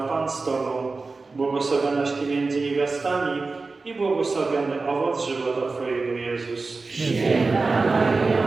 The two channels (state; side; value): quieter; left; 3.9 dB